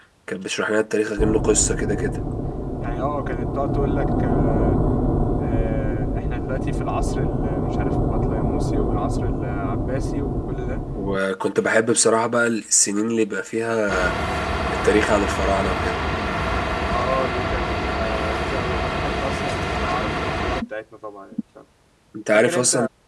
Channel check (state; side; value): identical; both; correlation 1.00